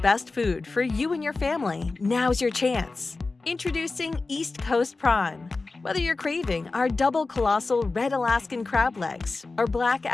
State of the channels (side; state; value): right; quieter; 3.7 dB